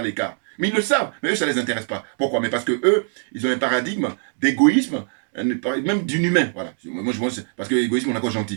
l'écart. Mais ils le savent, mais eux ça ne les intéresse pas. Pourquoi? Mais parce que eux, ils ont un paradigme d'égoïsme, même d'inhumain, voilà. Moi je vois, parce que l'égoïsme on a quoi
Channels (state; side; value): silent; left; 64 dB below the other